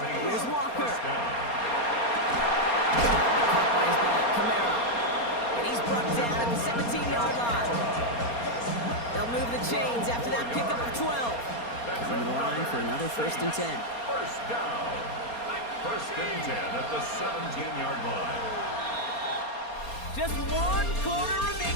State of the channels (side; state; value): right; late; 4.3 ms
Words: here's Walker. First down. Caught by his back, Kamara. And he's brought down at the 17-yard line. They'll move the chains after that pickup of 12. Coming to the line for another 1st and 10. First down. 1st and 10 at the 17-yard line. Just 1 quarter